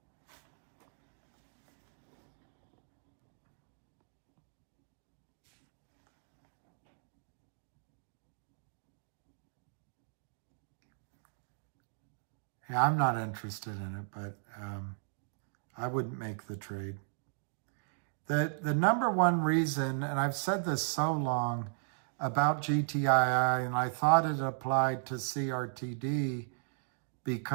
Yeah, I'm not interested in it, but I wouldn't make the trade. The number one reason, and I've said this so long about GTII, and I thought it applied to CRTD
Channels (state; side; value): silent; left; digital silence